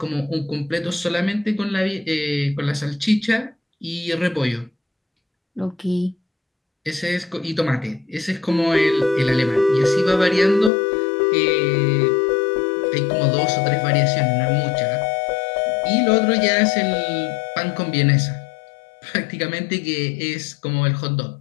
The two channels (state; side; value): drops out; right; at 10.7 s